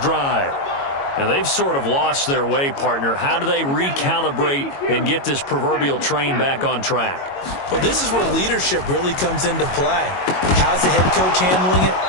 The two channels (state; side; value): late; right; 22 ms